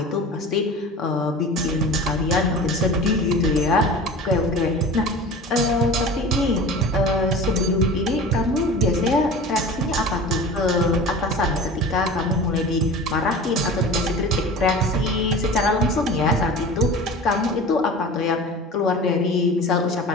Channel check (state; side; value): normal; both; correlation 0.37